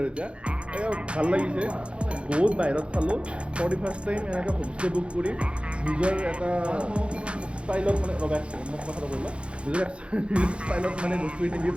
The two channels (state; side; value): late; left; 0.059 ms